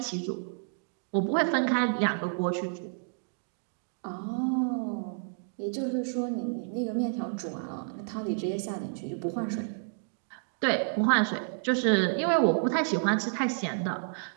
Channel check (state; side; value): silent; left; digital silence